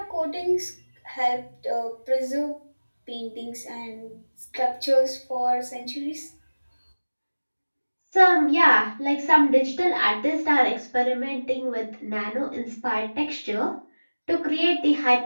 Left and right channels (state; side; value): inverted; both; correlation -1.00